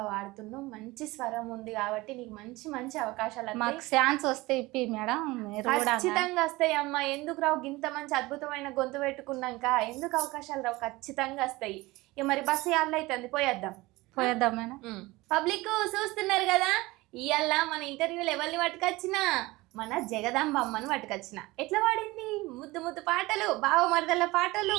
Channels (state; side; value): quieter; left; 20.9 dB